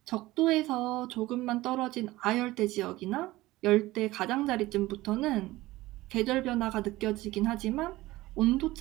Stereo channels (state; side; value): quieter; left; 18.2 dB